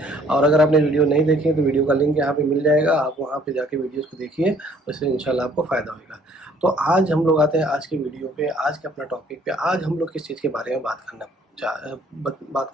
और अगर आपने वीडियो नहीं देखी है तो वीडियो का लिंक यहाँ पे मिल जाएगा, आप वहाँ पे जाके वीडियोज़ को देखिए, उससे इंशाल्लाह आपको फ़ायदा होगा। तो आज हम लोग आते हैं आज की वीडियो पे, आज के अपना टॉपिक पे। आज हम लोग किस चीज़ के बारे में बात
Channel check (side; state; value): both; normal; correlation 0.60